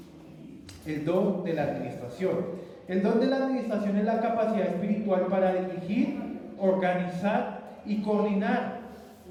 El don de la administración. El don de la administración es la capacidad espiritual para dirigir, organizar y coordinar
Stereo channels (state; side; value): identical; both; correlation 1.00